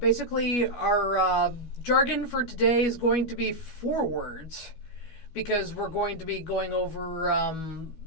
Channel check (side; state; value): right; late; 12 ms